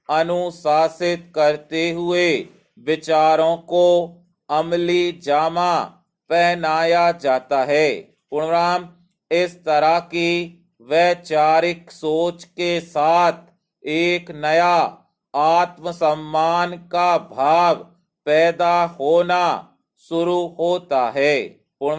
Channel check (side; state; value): both; identical; correlation 1.00